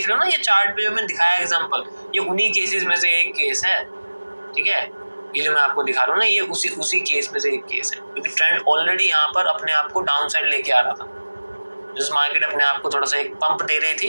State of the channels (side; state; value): both; inverted; correlation -1.00